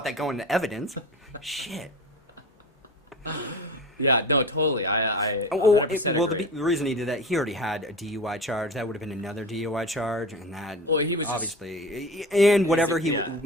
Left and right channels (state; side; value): normal; both; correlation 0.32